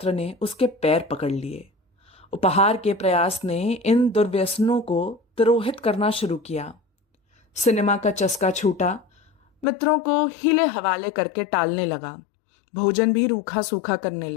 ने उसके पैर पकड़ लिए। उपहार के प्रयास ने इन दुर्व्यसनों को तिरोहित करना शुरू किया। सिनेमा का चस्का छूटा। मित्रों को हीले हवाले करके टालने लगा। भोजन भी रूखा सूखा करने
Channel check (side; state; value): right; drops out; at 9.7 s